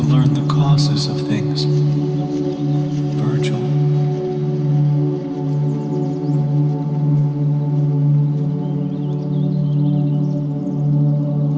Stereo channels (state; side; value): identical; both; correlation 1.00